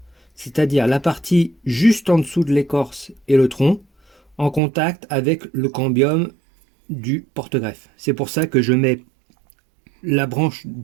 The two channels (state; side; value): drops out; left; at 4.6 s